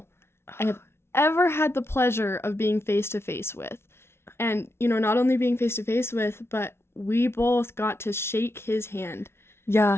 I have ever had the pleasure of being face to face with. And, not only being face to face with, but we both got to shake his hand. Yeah.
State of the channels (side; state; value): right; late; 0.12 ms